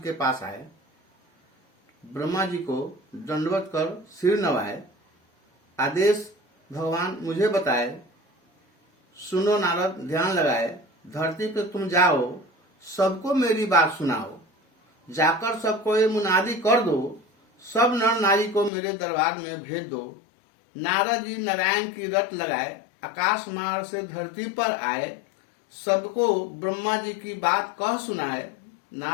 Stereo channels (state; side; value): drops out; right; at 18.7 s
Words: पास आए। ब्रह्मा जी को दंडवत कर सिर नवाए। आदेश भगवान मुझे बताए। सुनो नारद, ध्यान लगाए। धरती पे तुम जाओ, सबको मेरी बात सुनाओ। जाकर सबको ये मुनादी कर दो, सब नर नारी को मेरे दरबार में भेज दो। नारद जी नारायण की रट लगाए, आकाश मार्ग से धरती पर आए। सबको ब्रह्मा जी की बात कह सुनाए।